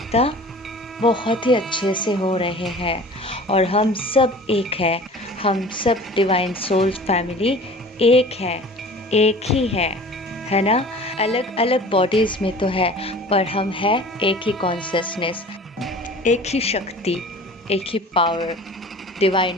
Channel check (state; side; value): normal; both; correlation 0.43